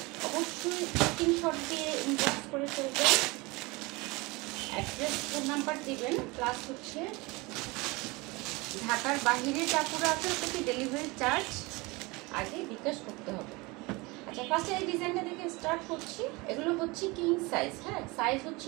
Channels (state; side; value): quieter; left; 24.6 dB